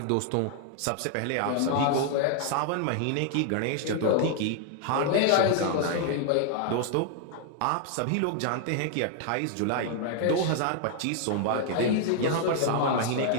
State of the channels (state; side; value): different; both; correlation 0.00